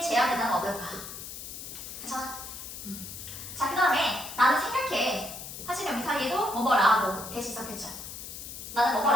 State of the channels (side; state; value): left; noise; hiss, 10 dB below the sound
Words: 제한된다면 어떨까? 괜찮아? 자, 그 다음에 나는 생각해 하시면 여기 사이에도 뭐뭐라고 대신 썼겠죠 나는